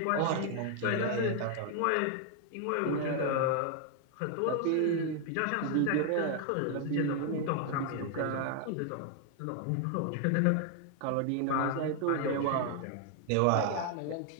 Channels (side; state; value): both; different; correlation 0.00